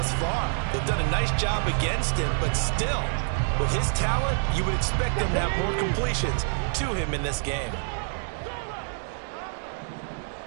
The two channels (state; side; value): silent; left; digital silence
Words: far. They've done a nice job against him, but still, with his talent, you would expect them to have more completions to him in this game.